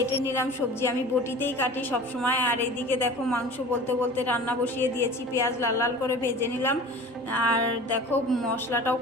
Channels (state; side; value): normal; both; correlation 0.39